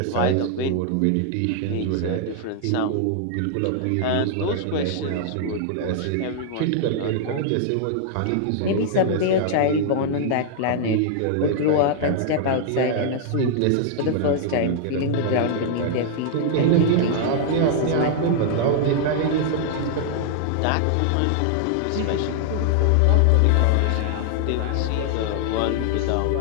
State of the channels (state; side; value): different; both; correlation -0.01